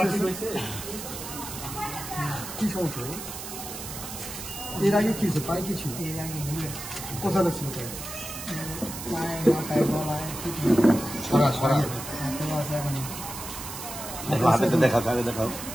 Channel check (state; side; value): noise; right; hiss, 9 dB below the sound